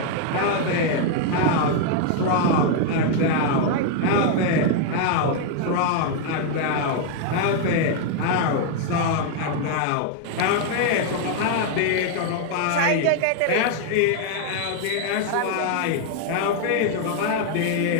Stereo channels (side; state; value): both; different; correlation 0.00